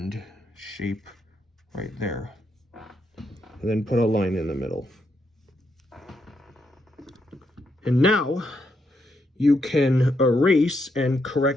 shape right there. And then put a line in the middle. And now you can erase and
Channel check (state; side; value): normal; both; correlation 0.79